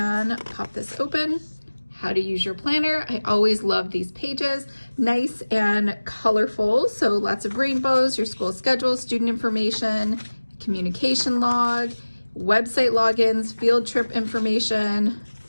pop this open. How to use your planner. I always love these pages. Nice and colorful. So lots of rainbows, your school schedule, student information, communication log, website logins, field trip information,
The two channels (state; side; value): inverted; both; correlation -1.00